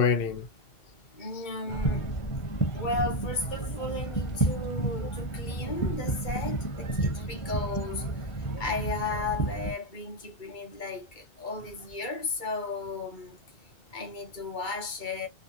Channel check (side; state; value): right; late; 2.2 ms